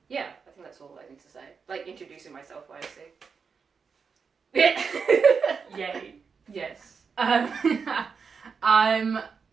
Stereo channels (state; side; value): quieter; left; 5.6 dB